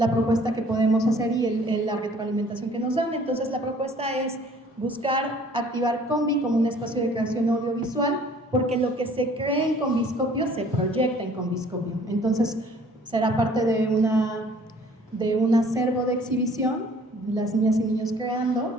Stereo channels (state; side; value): normal; both; correlation 0.54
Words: propuesta que podemos hacer y la retroalimentación que nos dan. Entonces la propuesta es buscar activar Combi como un espacio de creación audiovisual, porque lo que se cree en Combiscopio se proyecta en Combiscopio. Entonces será parte de un acervo de exhibición, las niñas y niños